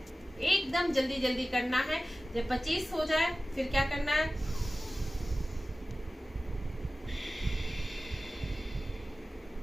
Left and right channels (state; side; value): normal; both; correlation 0.96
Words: एकदम जल्दी जल्दी करना है। जब 25 हो जाए फिर क्या करना है,